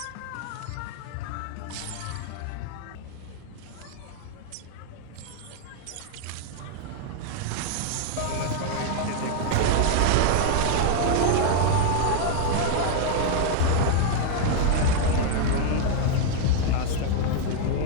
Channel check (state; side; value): different; both; correlation 0.00